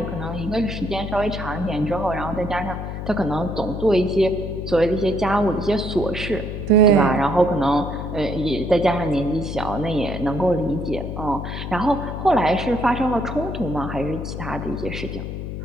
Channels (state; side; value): noise; left; hum, 6 dB below the sound